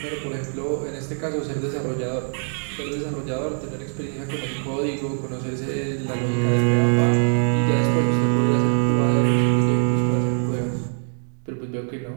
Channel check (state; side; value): silent; left; 60 dB below the other